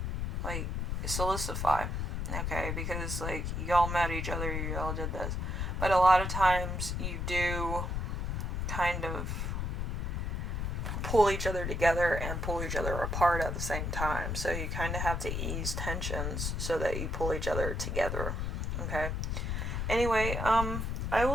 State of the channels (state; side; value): noise; left; rumble, 1 dB below the sound